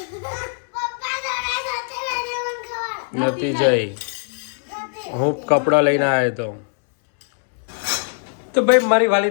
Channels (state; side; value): silent; right; 65 dB below the other